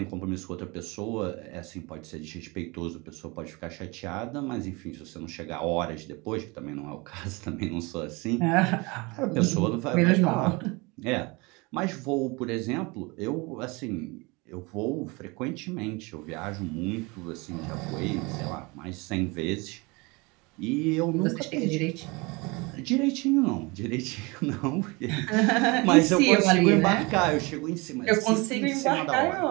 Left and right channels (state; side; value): quieter; left; 26.2 dB